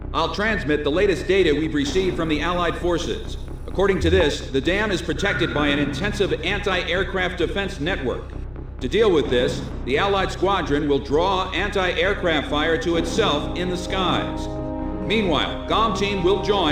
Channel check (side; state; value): left; noise; hum, 27 dB below the sound